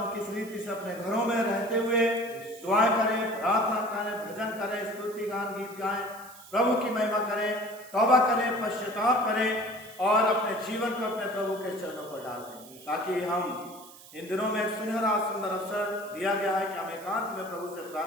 किस रीति से अपने घरों में रहते हुए दुआएं करें, प्रार्थना करें, भजन करें, स्तुति गान, गीत गाएं, प्रभु की महिमा करें, तौबा करें, पश्चाताप करें और अपने जीवन को अपने प्रभु के चरणों पर डाल दें, ताकि हम इन दिनों में एक सुनहरा सुंदर अवसर दिया गया है कि हम एकांत में प्रभु से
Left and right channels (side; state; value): right; noise; hiss, 19 dB below the sound